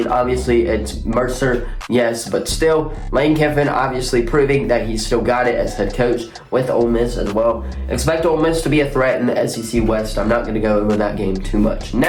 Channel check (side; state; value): both; identical; correlation 1.00